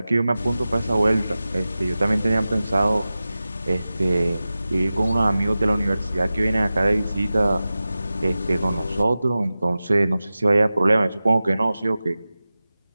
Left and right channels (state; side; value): inverted; both; correlation -0.95